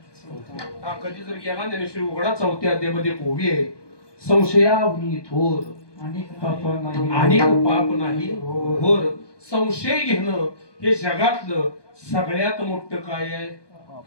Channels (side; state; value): right; late; 1.2 ms